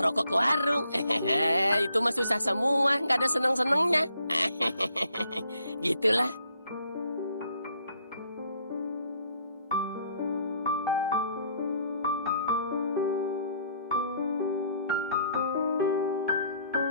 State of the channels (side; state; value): both; inverted; correlation -0.67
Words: rokok ke warung. Itu mah susah semua, nggak ada seneng-senengnya. Gitulah.